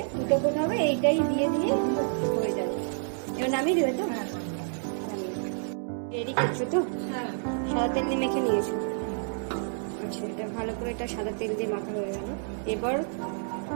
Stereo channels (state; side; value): silent; left; digital silence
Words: 2টো কোট হবে, এইটাই দিয়ে দিয়ে হয়ে যাবে। এবার নামিয়ে দেবে তো? রেডি করছো তো? সাদা তেল দিয়ে মেখে নিয়েছো। আচ্ছা, এটা ভালো করে এটা সাদা তেল দিয়ে মাখা হয়ে গেল। এবার